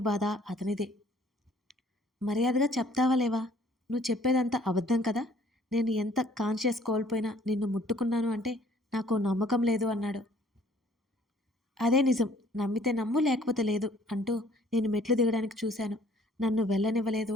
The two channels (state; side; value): normal; both; correlation 0.58